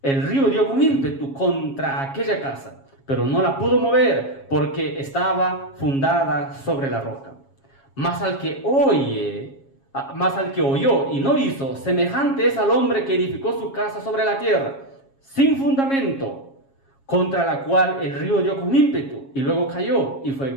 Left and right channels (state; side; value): late; right; 7.3 ms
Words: el río dio con ímpetu contra aquella casa, pero no la pudo mover porque estaba fundada sobre la roca. Mas al que oyó y no hizo, semejante es al hombre que edificó su casa sobre la tierra, sin fundamento, contra la cual el río dio con ímpetu y luego cayó, y fue